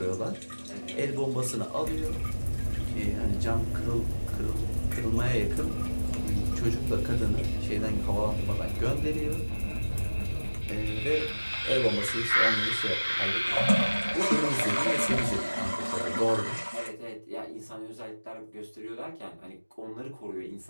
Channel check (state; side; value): inverted; both; correlation -1.00